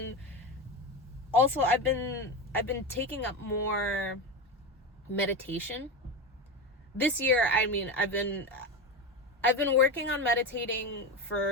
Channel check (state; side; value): normal; both; correlation 0.19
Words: also I've been taking up more meditation this year. I mean, I've been working on meditating